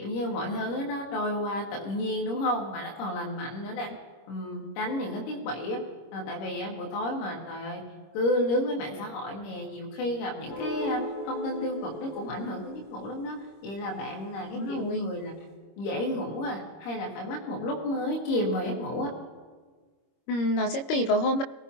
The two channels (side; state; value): right; late; 26 ms